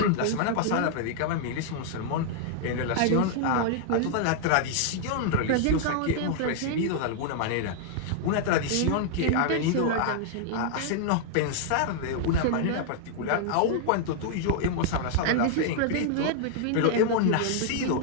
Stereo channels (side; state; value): both; different; correlation -0.01